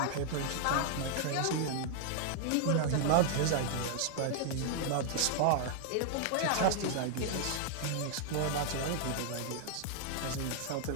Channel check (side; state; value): both; different; correlation 0.00